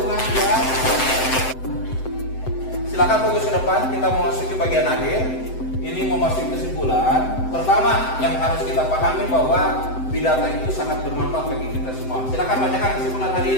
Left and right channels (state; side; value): late; right; 7.8 ms